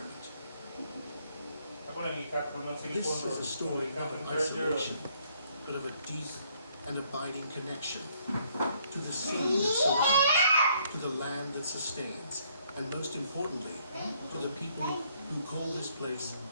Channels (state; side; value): inverted; both; correlation -0.67